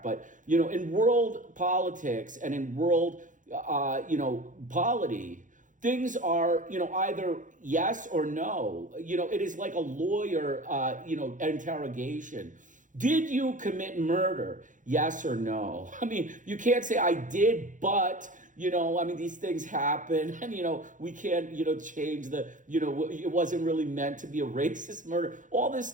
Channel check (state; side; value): late; left; 0.37 ms